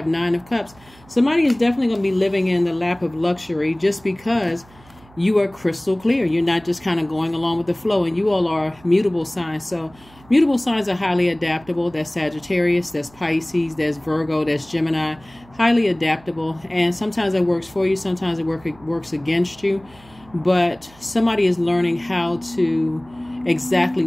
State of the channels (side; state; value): right; noise; hum, 26 dB below the sound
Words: Nine of Cups. Somebody is definitely going to be living in the lap of luxury, just because you are crystal clear. You're not just kind of going along with the flow, and you all are mutable signs. So mutable signs are highly adaptable. That's Sagittarius, that's Pisces, that's Virgo, that's Gemini. Highly adaptable, and sometimes it works for you, sometimes it works against you. But somebody is learning how to exactly